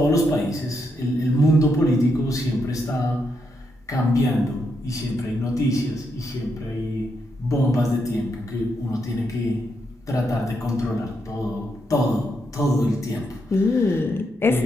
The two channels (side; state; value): both; normal; correlation 0.80